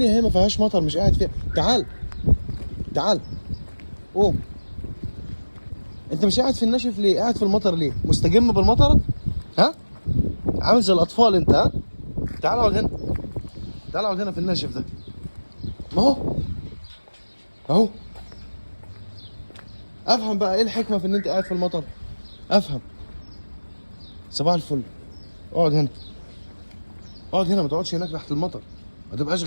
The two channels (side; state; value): both; inverted; correlation -1.00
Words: هي ما فيهاش مطر مش قاعد فيها. تعال تعال قوم. انت مش قاعد في الناشف ليه؟ قاعد في المطر ليه؟ مستجم بالمطر؟ ها؟ عامل زي الاطفال انت، ها؟ تعال اقعد هنا، تعال اقعد هنا في الناشف ده. ما هو اهو. افهم بقى ايه الحكمه في ان انت قاعد في المطر؟ افهم. صباح الفل. اقعد هنا، اقعد هنا، ما تقعدش هناك تحت المطر. ما تبقاش